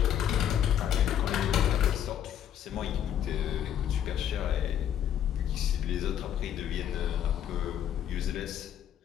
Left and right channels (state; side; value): quieter; right; 9.9 dB